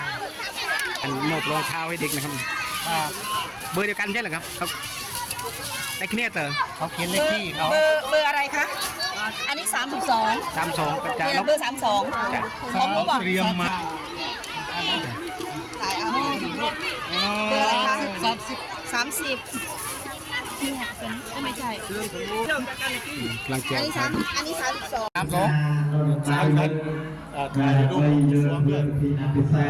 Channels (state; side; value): identical; both; correlation 1.00